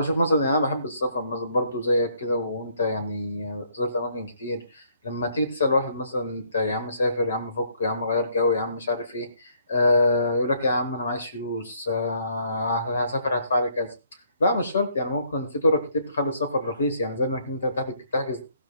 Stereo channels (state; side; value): inverted; both; correlation -0.66